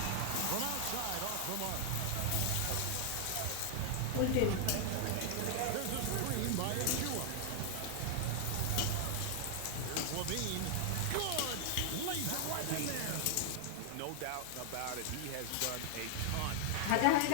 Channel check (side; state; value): both; different; correlation 0.00